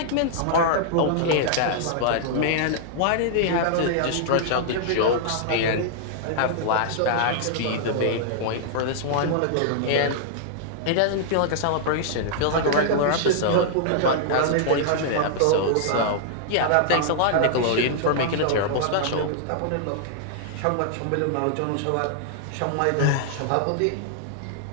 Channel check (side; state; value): both; different; correlation -0.01